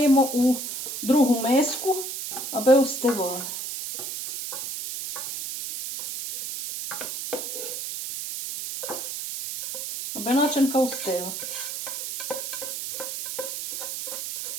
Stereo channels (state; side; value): noise; right; hiss, 6 dB below the sound